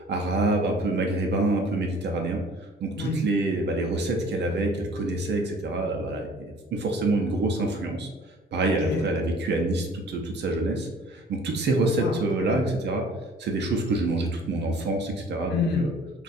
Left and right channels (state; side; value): normal; both; correlation 0.52